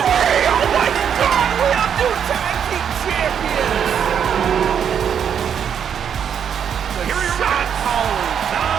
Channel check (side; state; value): left; quieter; 8.1 dB